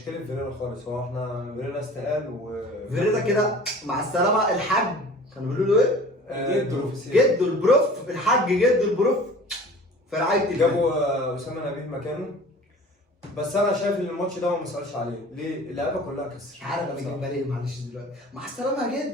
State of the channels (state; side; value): normal; both; correlation 0.43